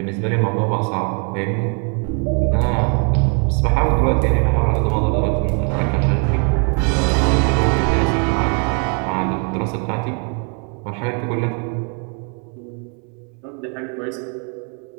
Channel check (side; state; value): left; quieter; 39.3 dB